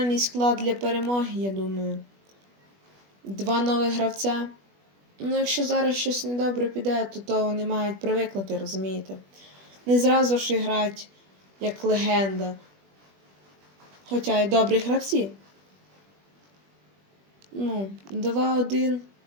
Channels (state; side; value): late; left; 20 ms